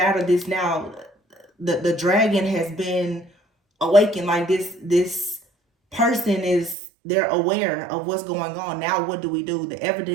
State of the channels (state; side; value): drops out; left; at 6.8 s